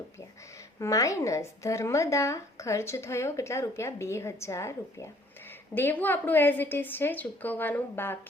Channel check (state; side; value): normal; both; correlation 0.58